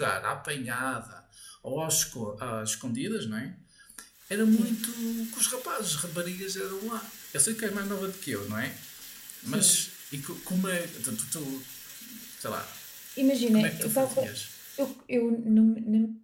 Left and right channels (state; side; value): identical; both; correlation 1.00